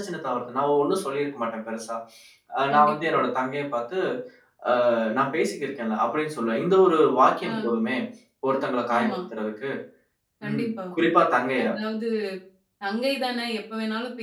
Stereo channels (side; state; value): both; identical; correlation 1.00